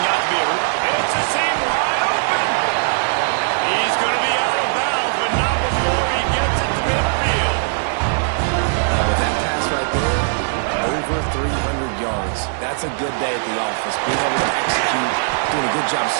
out to be it's a seam wide open. He's going to be out of bounds, but not before he gets it to midfield. With that pass right there, over 300 yards. That's a good day at the office. Being able to execute, doing a good job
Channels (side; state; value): left; silent; digital silence